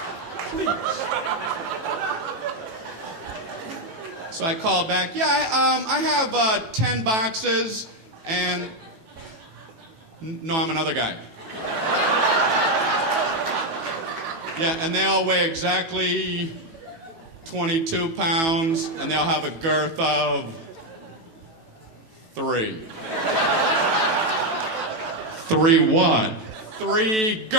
Please. So I called back. Yeah, I have 10 boxes, and... No, I'm another guy. Yeah, and they all weigh exactly 22 pounds, and they'll have a girth of 3. 3 what? 3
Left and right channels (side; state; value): left; late; 18 ms